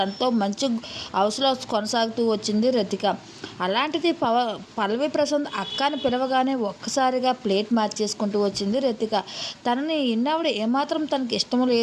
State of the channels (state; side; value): identical; both; correlation 1.00